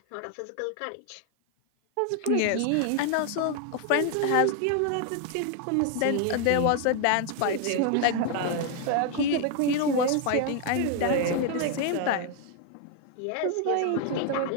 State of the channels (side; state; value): both; different; correlation 0.00